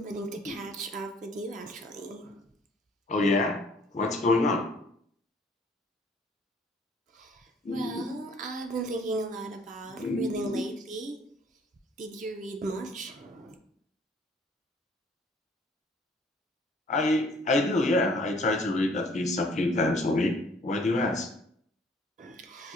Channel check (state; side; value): normal; both; correlation 0.59